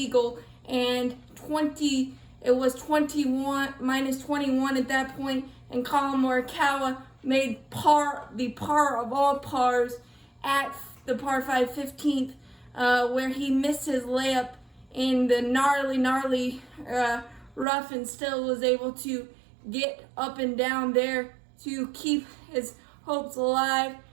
and it was 21 -21 at that point, and Colin Morikawa made the par of all pars at the par 5 15th, where he missed his layup in the gnarly rough, and still was able to get up and down there to keep his hopes alive.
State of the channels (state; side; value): drops out; left; at 17.7 s